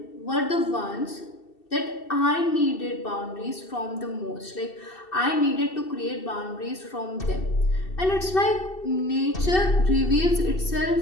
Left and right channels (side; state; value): right; late; 2.7 ms